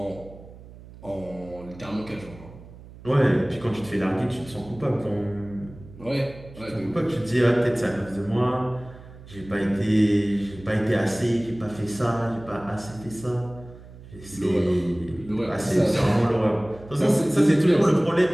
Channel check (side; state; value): right; noise; hum, 18 dB below the sound